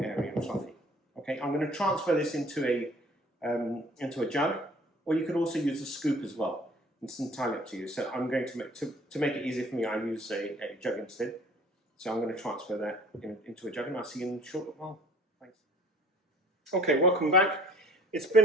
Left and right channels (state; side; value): normal; both; correlation 0.51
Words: airy and fluffy. Okay, I'm going to transfer this into a jug. Or you could also use a scoop as well. It's entirely up to you. So I'm going to make it easier for me, I use a jug instead. So I'm going to transfer that into a jug, and I'll see you in a short while. Thanks. Okay, welcome back. It's